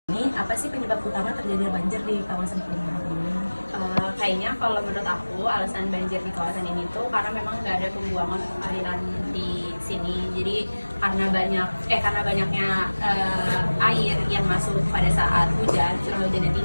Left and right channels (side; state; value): both; inverted; correlation -1.00